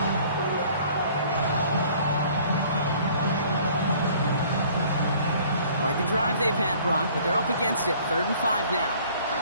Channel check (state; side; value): inverted; both; correlation -0.54